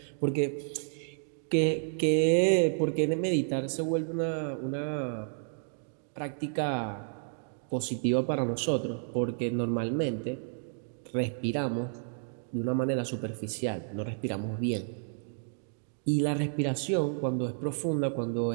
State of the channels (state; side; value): silent; left; digital silence